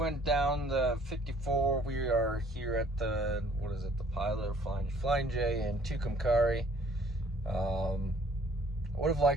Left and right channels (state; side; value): normal; both; correlation 0.59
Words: down the 54. We are here at the, what is it, the Pilot or Flying J in Tucumcari. I would have